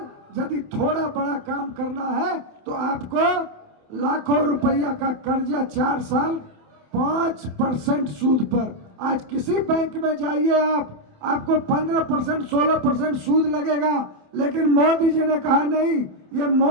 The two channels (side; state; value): left; late; 27 ms